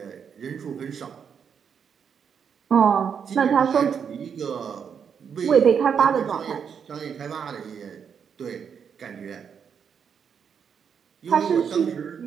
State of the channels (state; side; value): quieter; left; 7.2 dB